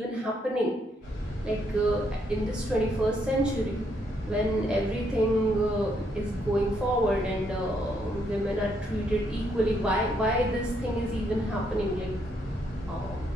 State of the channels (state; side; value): normal; both; correlation 0.74